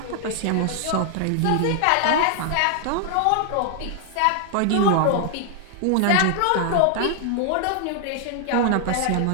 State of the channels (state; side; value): different; both; correlation 0.00